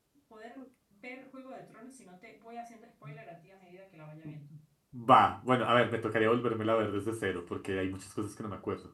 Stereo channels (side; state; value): both; identical; correlation 1.00